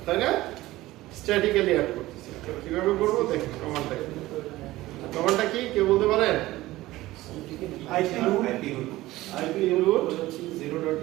তাই না? স্ট্যাটিক্যালি অ্যাড করতেছি। কিভাবে করবো দেখুন, কমান্ডটা কি কেউ বলতে পারেন? আইপি রুট 0.0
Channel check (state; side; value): quieter; left; 17.3 dB